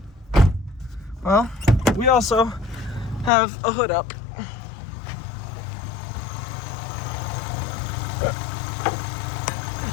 Well, we also have a hood up.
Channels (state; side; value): drops out; right; at 3.3 s